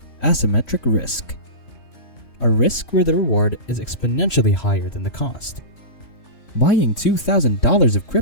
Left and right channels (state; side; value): late; right; 3.4 ms